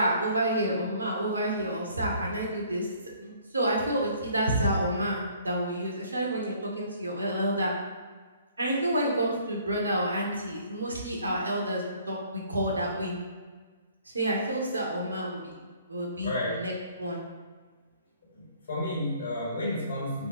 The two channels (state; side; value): inverted; both; correlation -0.59